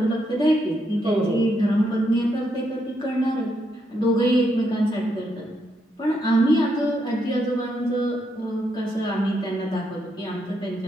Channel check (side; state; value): both; normal; correlation 0.79